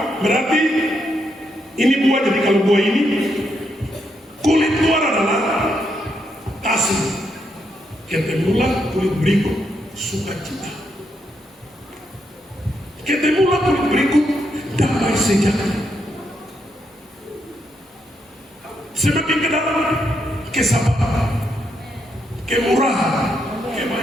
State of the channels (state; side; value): normal; both; correlation 0.79